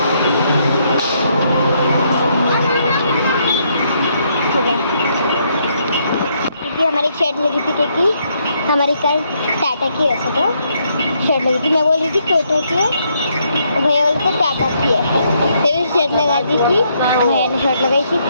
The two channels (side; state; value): both; inverted; correlation -0.73